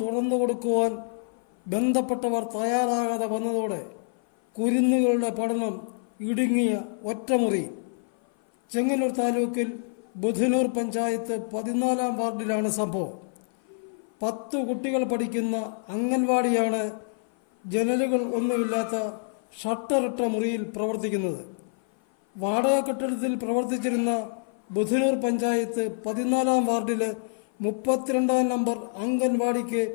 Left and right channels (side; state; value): right; silent; 55 dB below the other